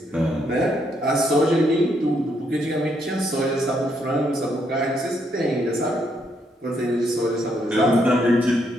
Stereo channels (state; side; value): normal; both; correlation 0.75